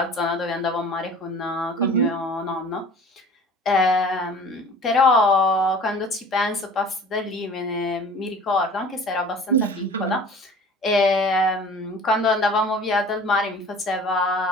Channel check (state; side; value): normal; both; correlation 0.44